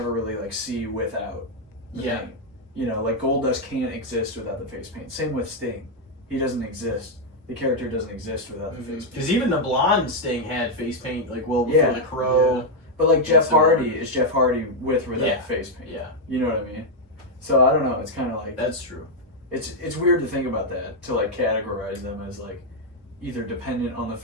really like see without the paint. You know, like Goldust can't exist without the face paint. Same with Sting. He doesn't exist. The character doesn't exist without the face paint. Because even the blonde Sting had face paint, like before the Crow. Yeah. But like Jeff Hardy is Jeff Hardy with or without face paint. Yeah. You know what I mean? So I don't know. It's kind of like that's true. It's weird to think about that, to like categorize them as like either dependent on the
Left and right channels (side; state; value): both; normal; correlation -0.01